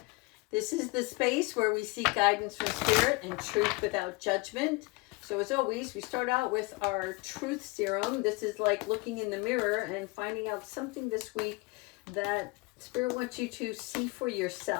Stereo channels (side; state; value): right; quieter; 25.3 dB